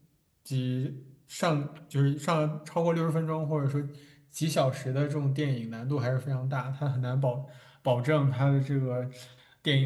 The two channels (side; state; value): both; identical; correlation 1.00